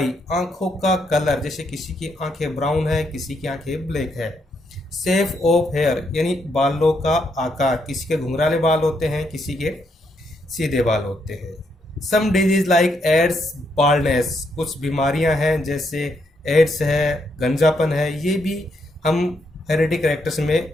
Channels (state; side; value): normal; both; correlation 0.77